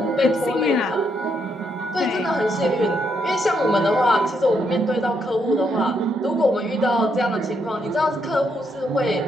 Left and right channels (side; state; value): both; normal; correlation 0.77